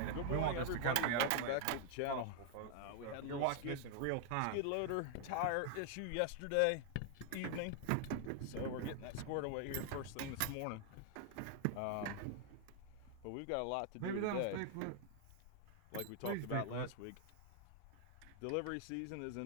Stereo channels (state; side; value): different; both; correlation 0.00